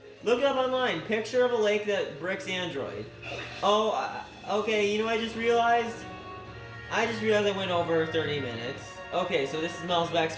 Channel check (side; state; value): both; identical; correlation 1.00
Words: Look it up online. Picture of a lake that bricks Android. Oh, okay, you know what I just realized? I went over 30 minutes. Okay, so this is